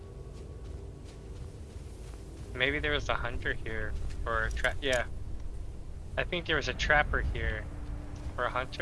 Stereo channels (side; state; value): both; identical; correlation 1.00